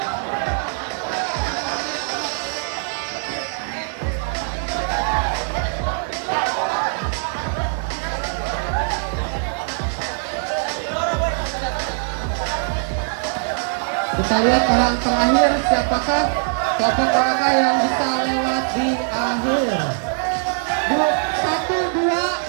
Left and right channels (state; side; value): silent; left; 64 dB below the other